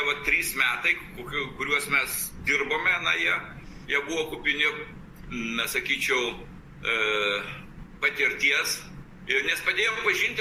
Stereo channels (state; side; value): identical; both; correlation 1.00